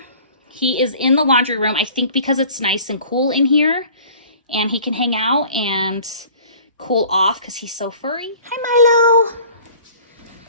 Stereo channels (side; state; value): both; inverted; correlation -0.48